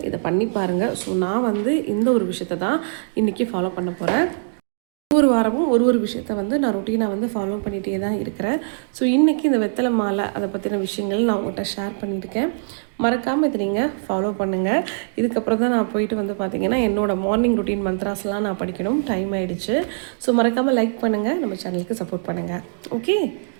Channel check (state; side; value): silent; left; digital silence